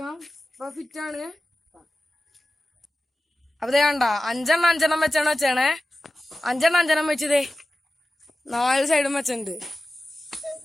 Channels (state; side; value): normal; both; correlation 0.95